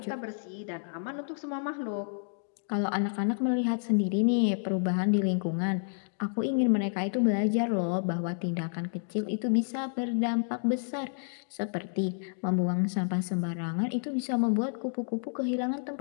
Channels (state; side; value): silent; right; digital silence